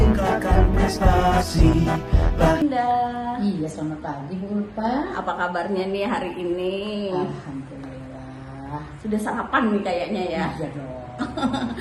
prestasi. Iya, selamat pagi Bu Ulfa. Apa kabarnya nih hari ini? Alhamdulillah. Sudah sarapan nih kayaknya ya. Iya dong.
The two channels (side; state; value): both; identical; correlation 1.00